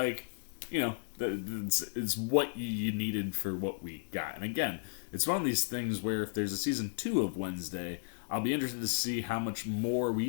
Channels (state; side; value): silent; right; digital silence